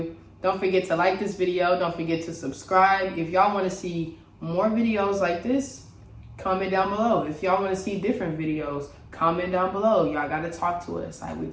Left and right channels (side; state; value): both; identical; correlation 1.00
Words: Don't forget to like this video. Don't forget to subscribe. If y'all want to see more videos like this, comment down below. If y'all want to see different videos, comment down below. Y'all got to talk to us like we